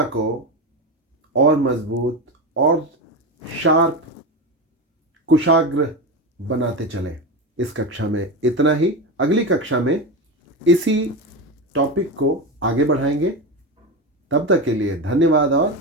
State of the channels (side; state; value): both; normal; correlation 0.18